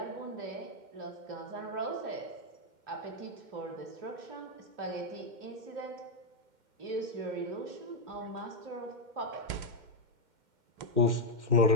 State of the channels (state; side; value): late; left; 2.1 ms